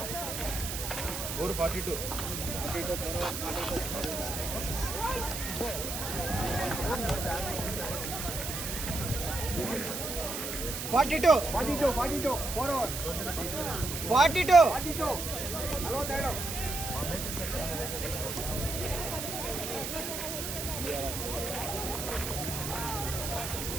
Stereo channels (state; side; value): noise; right; hiss, 5 dB below the sound